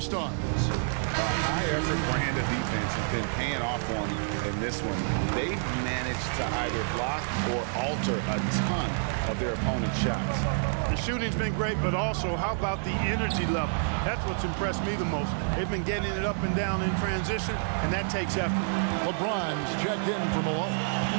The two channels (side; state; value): left; silent; digital silence